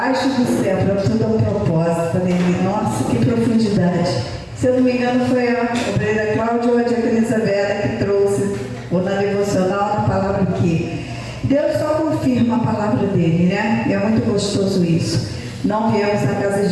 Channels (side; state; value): both; identical; correlation 1.00